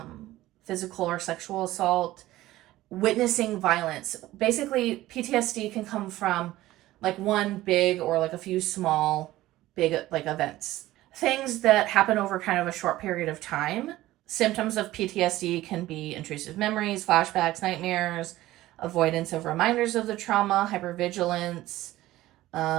physical or sexual assault, witnessing violence. Basically, PTSD can come from like one big or like a few small big like events. Things that happen over kind of a short period of time. Symptoms of PTSD can be intrusive memories, flashbacks, nightmares, avoidance of reminders of the trauma, hypervigilance,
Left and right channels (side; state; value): left; quieter; 16.2 dB